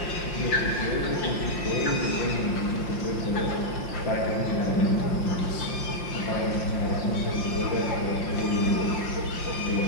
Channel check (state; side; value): late; right; 5.6 ms